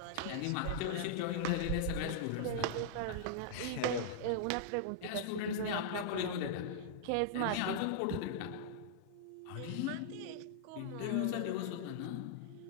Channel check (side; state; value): both; different; correlation -0.01